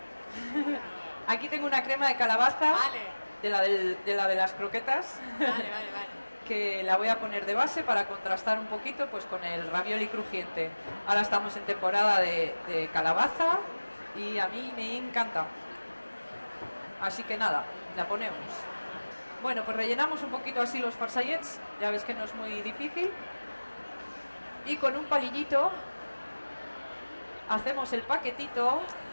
Aquí tengo una crema de calabaza Vale. de la de las croquetas, Vale. que la voy a poner de base para contrastar un poquito pues con el ravioli crujiente. Ahora estamos en temporada de calabaza y a mí me encanta. Así que nada, la ponemos. Bueno, pues rellenamos un poquito así los farsallets, ya ves que no es muy difícil. Y con un palillito hacemos el paquetito.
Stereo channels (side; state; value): both; inverted; correlation -1.00